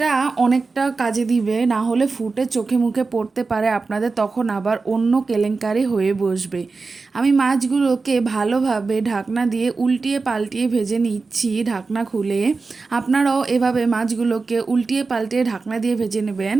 অনেকটা কাজে দিবে, না হলে ফুটে চোখে মুখে পড়তে পারে আপনাদের, তখন আবার অন্য কেলেঙ্কারি হয়ে বসবে। আমি মাছগুলোকে ভালোভাবে ঢাকনা দিয়ে উল্টিয়ে পাল্টিয়ে ভেজে নিচ্ছি ঢাকনা খুলে। আপনারাও এভাবে মাছগুলোকে উল্টিয়ে পাল্টিয়ে ঢাকনা দিয়ে ভেজে নেবেন।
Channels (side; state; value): left; quieter; 4.2 dB